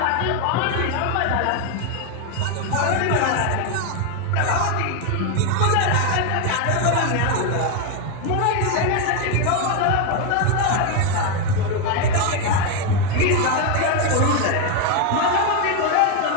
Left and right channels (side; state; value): both; different; correlation 0.02